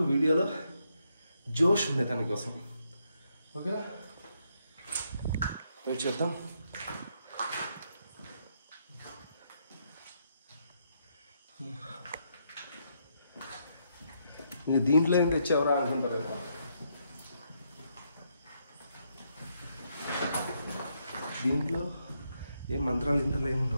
వీడియోలో జోష్ ఉండే దానికోసం. ఓకేనా, వెయిట్ చేద్దాం. ఇంక దీంట్లో ఏం తెచ్చావరా అనుకుంటారు. దీంట్లో ఏం మంత్రాలు ఇంట్లో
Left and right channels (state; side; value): inverted; both; correlation -0.77